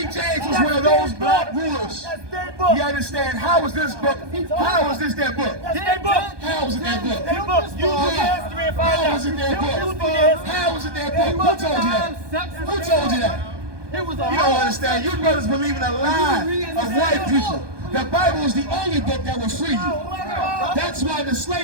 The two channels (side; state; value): left; late; 1.2 ms